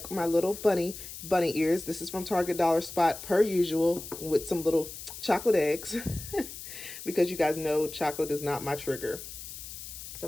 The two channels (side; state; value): left; noise; hiss, 11 dB below the sound